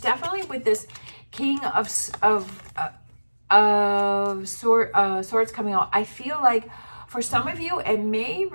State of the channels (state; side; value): inverted; both; correlation -1.00